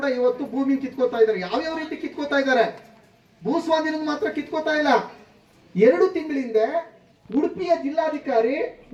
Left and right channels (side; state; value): both; identical; correlation 1.00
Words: ಇವತ್ತು ಭೂಮಿ ಕಿತ್ಕೋತಾ ಇದ್ದಾರೆ. ಯಾವ್ಯಾವ ರೀತಿ ಕಿತ್ಕೋತಾ ಇದ್ದಾರೆ, ಭೂಸ್ವಾಧೀನ ಮಾತ್ರ ಕಿತ್ಕೋತಾ ಇಲ್ಲ. 2 ತಿಂಗಳಿಂದ ಉಡುಪಿಯ ಜಿಲ್ಲಾಧಿಕಾರಿ